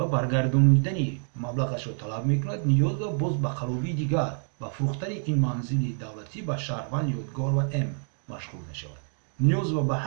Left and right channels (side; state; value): left; silent; 55 dB below the other